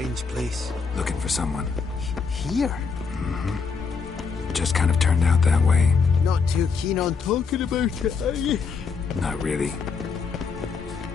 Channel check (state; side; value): quieter; right; 5.2 dB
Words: place? Looking for someone. Here? Mm-hmm. Just kind of turned out that way. Not too keen on talking about it, are you? Not really.